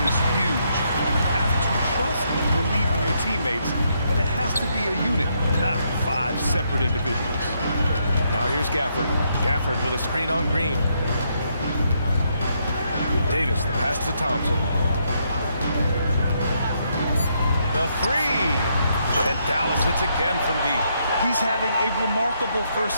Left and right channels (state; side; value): inverted; both; correlation -0.76